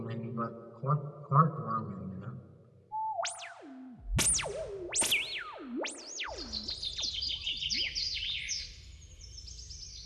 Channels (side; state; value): both; identical; correlation 1.00